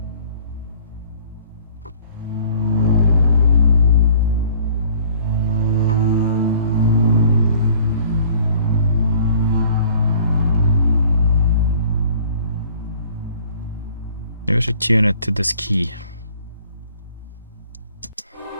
Maybe I should tune it to this key.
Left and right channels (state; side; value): inverted; both; correlation -0.53